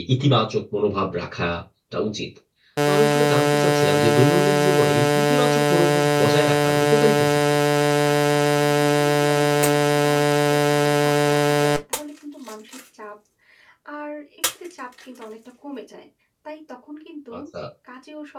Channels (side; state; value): both; identical; correlation 1.00